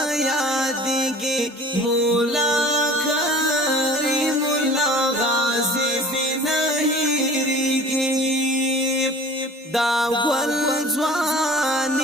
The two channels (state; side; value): normal; both; correlation 0.44